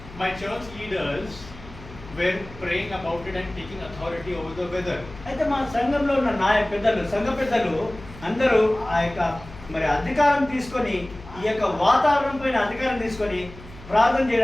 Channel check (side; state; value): left; noise; hum, 17 dB below the sound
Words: My church leaders were praying about it and taking authority over the weather. అయితే మా సంఘంలో ఉన్న సంఘ పెద్దలు అందరూ ఆ యొక్క మరి అధికారం తీసుకొని, ఈ యొక్క వాతావరణం పైన అధికారం తీసుకొని ప్రార్థన